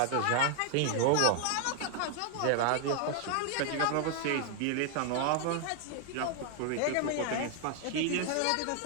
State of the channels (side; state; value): both; different; correlation 0.00